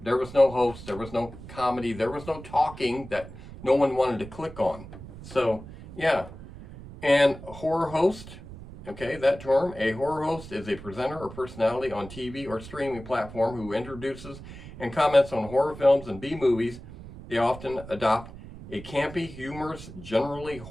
There was no host, there was no comedy, there was no talking that no one wanted to click on. So, yeah. And horror host, okay, that term, a horror host is a presenter or personality on TV or streaming platform who introduces and comments on horror films and B-movies. They often adopt a campy, humorous, generally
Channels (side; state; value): right; noise; rumble, 14 dB below the sound